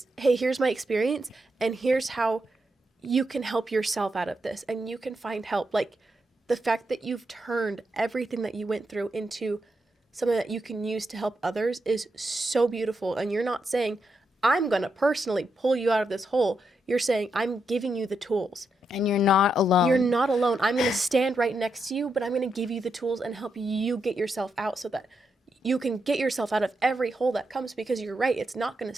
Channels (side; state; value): both; normal; correlation 0.83